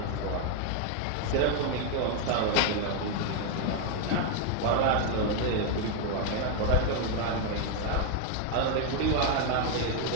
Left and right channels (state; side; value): different; both; correlation 0.01